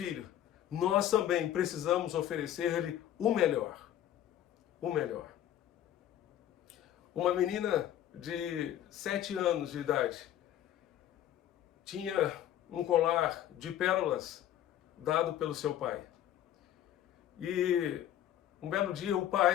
Nós também precisamos oferecer-lhe o melhor. O melhor. Uma menina de 7 anos de idade tinha um colar de pérolas dado pelo seu pai. E um belo dia o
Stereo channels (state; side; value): quieter; right; 11.6 dB